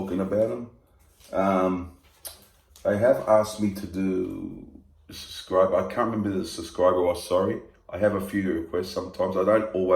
about them. They have asked me to do subscribe. I can't remember the subscriber was, sorry. I have a few requests sometimes. I don't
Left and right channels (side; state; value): both; identical; correlation 1.00